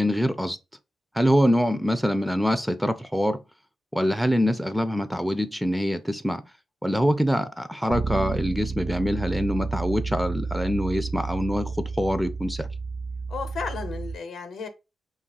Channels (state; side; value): normal; both; correlation 0.94